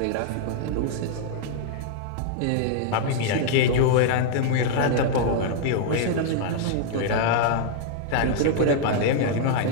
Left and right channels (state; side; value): different; both; correlation -0.01